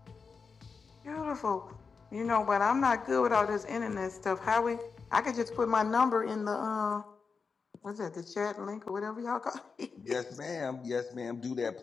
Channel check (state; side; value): quieter; right; 5.1 dB